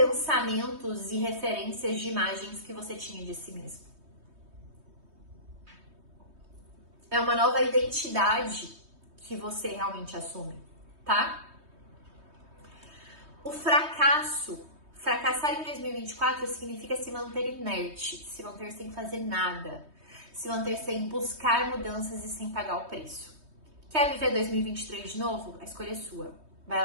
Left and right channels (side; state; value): left; late; 3.2 ms